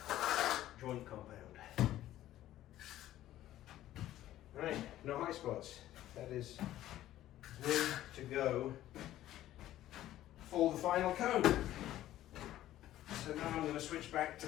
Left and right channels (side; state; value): right; quieter; 13.7 dB